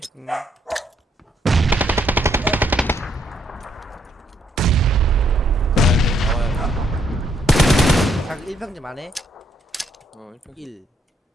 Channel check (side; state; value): both; normal; correlation 0.71